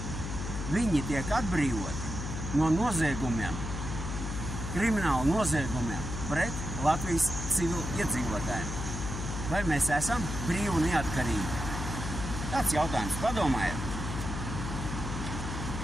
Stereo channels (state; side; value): noise; left; hum, 5 dB below the sound